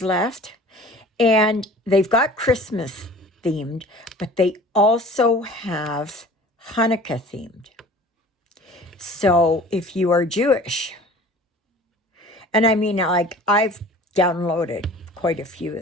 left. And they've got Christmas themed, but they also have Hanukkah themed. So if you are Jewish, and I mean, like, I've downloaded quite a few of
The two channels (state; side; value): normal; both; correlation 0.45